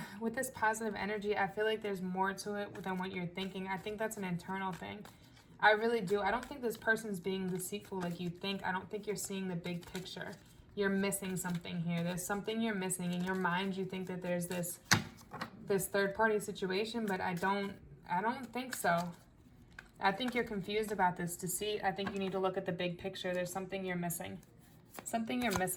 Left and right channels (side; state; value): both; identical; correlation 1.00